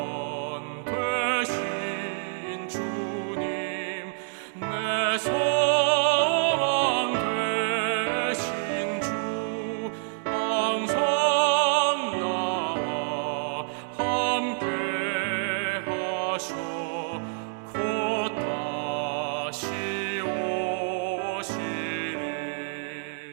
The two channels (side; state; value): left; silent; 60 dB below the other